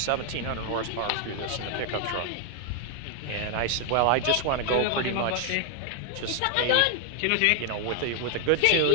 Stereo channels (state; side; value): different; both; correlation 0.00